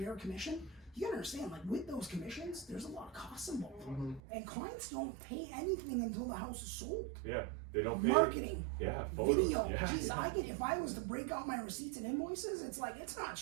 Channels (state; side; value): drops out; left; at 4.2 s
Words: commission, you gotta understand, like, with those commissions, there's a lot of costs involved. And clients don't pay anything until the house is sold. Yeah, they don't pay. Marketing, Yeah, photos. video. Yeah. Jeez, if I was to break out my receipts and invoices, it's like, it's not